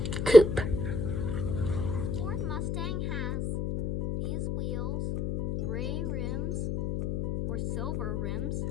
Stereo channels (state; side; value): noise; left; hum, 2 dB below the sound